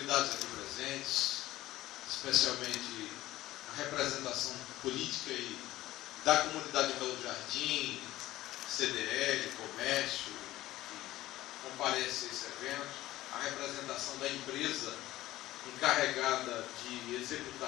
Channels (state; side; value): quieter; right; 16.0 dB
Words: aqui presentes, especialmente a representação política e da comunidade de Belo Jardim, CDL, comércio, que comparece a esse evento, a representação da empresa encarregada de